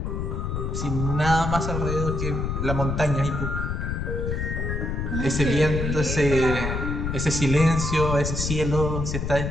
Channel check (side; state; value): left; noise; rumble, 2 dB below the sound